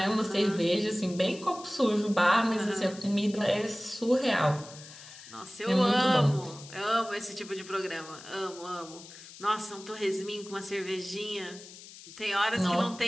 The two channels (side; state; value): left; noise; hiss, 17 dB below the sound